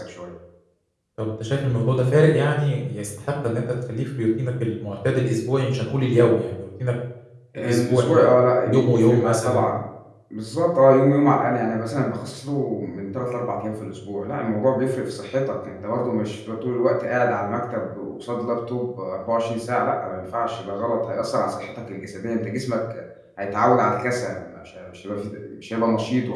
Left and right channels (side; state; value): both; identical; correlation 1.00